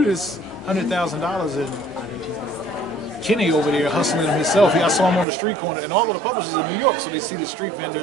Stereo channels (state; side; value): drops out; left; at 5.2 s